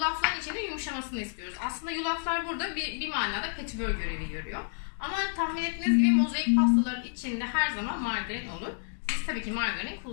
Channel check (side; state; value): right; silent; digital silence